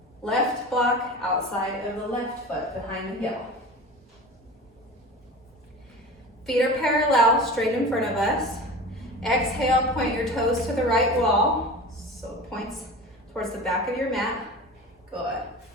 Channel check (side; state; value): both; normal; correlation 0.34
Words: Left block outside of the left foot behind the heel. Feet are parallel, straight in front of us. Exhale, point your toes to the right wall. So it points towards the back of your mat. Good.